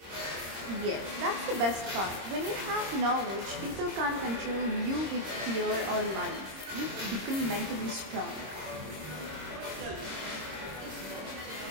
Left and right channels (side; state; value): left; late; 26 ms